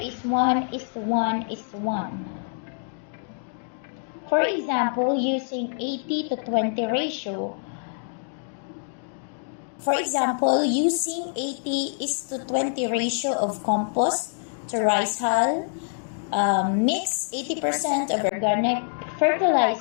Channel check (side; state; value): right; silent; digital silence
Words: 1:1:1. For example, using 80 to 20 ratio. For example, using 80:20 ratio of compost to rice hull, mix 80% of organic